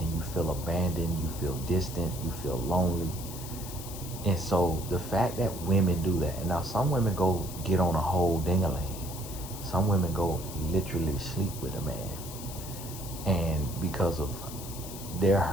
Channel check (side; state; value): left; noise; hiss, 12 dB below the sound